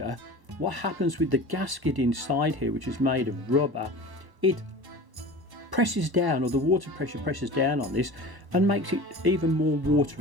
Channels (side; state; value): left; late; 1.0 ms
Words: what happens with the gasket inside here, which is made of rubber, it presses down, or the water pressure presses down on this and makes it even more water